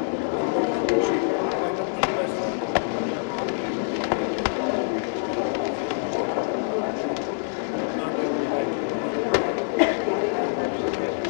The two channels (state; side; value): silent; right; 61 dB below the other